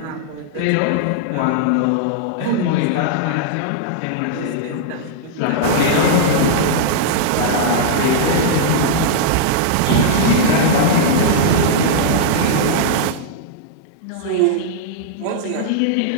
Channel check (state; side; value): different; both; correlation -0.02